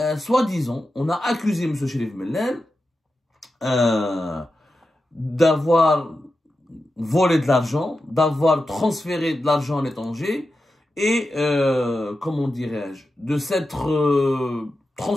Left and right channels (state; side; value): normal; both; correlation 0.91